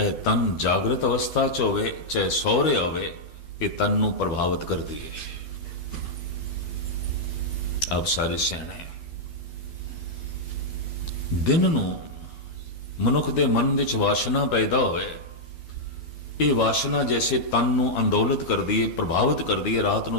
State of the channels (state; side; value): late; right; 12 ms